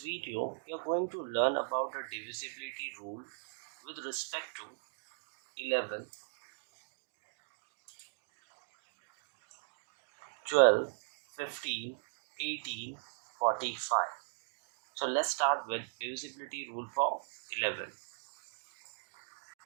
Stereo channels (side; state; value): left; silent; digital silence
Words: we are going to learn about the divisibility rule with respect to 11, 12, 15, 18, 45. So let's start with divisibility rule for 11.